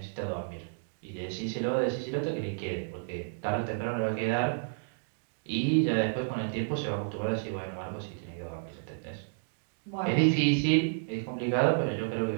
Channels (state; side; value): silent; left; digital silence